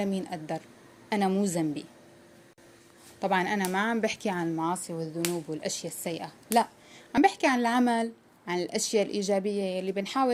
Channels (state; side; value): identical; both; correlation 1.00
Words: قدر، أنا مو ذنبي. طبعا أنا ما عم بحكي عن المعاصي والذنوب والأشياء السيئة، لا، عم بحكي عن العمل، عن الأشياء الإيجابية يلي